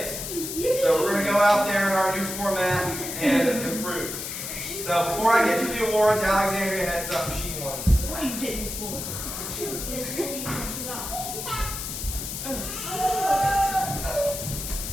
So we're going to go out there in our new format and improve. So before I get to the awards, Alexandria had something she wanted to say. What are you getting for?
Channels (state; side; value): noise; left; hiss, 6 dB below the sound